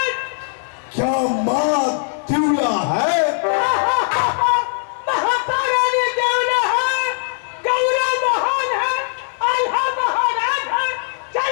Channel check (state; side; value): silent; right; digital silence